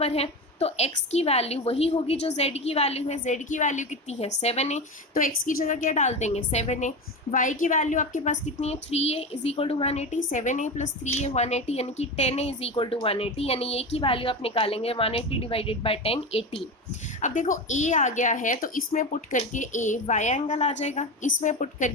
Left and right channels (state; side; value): normal; both; correlation 0.22